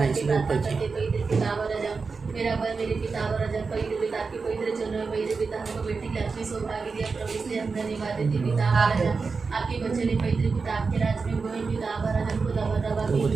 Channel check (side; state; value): left; quieter; 4.7 dB